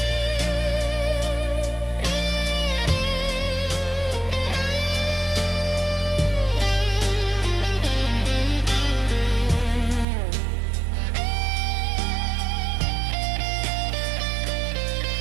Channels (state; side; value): drops out; left; at 10.1 s